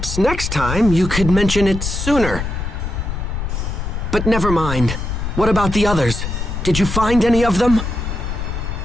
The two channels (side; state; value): left; noise; rumble, 4 dB below the sound